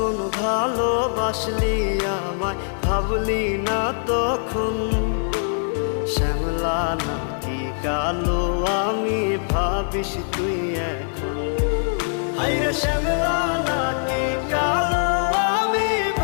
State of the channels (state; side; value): silent; right; 59 dB below the other